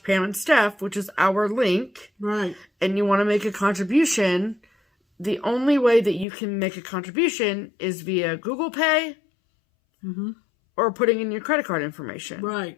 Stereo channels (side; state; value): right; drops out; at 6.2 s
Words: and Steph, which is our link, right, and you want to make a contribution, the only way that you can make a contribution is via Google Pay mm-hmm. or putting in your credit card information. Right.